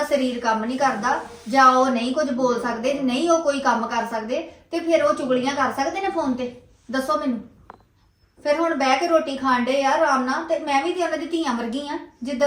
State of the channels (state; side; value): identical; both; correlation 1.00